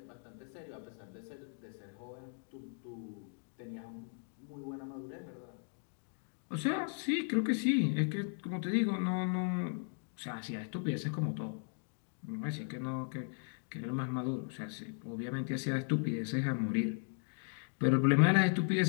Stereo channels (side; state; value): right; silent; 53 dB below the other